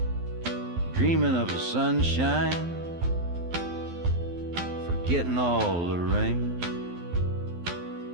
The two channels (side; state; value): left; late; 12 ms